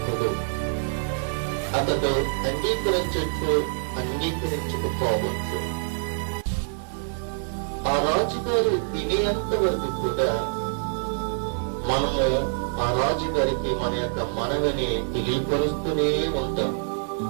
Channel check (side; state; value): left; silent; 61 dB below the other